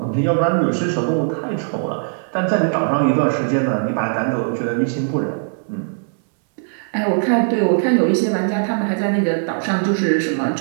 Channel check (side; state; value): left; silent; 66 dB below the other